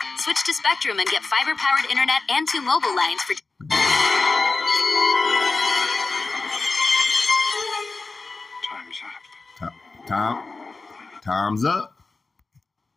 Switch to Spectrum and get fiber-powered internet and 2 mobile lines for... Time's up.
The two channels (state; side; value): quieter; right; 3.8 dB